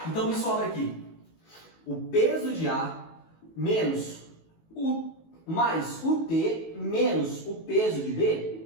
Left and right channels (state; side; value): late; right; 19 ms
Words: Então me sobra aqui o peso de A menos mais o T menos o peso de